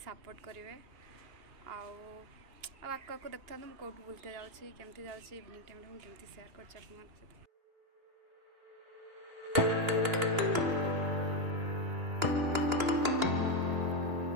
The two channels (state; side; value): late; left; 2.9 ms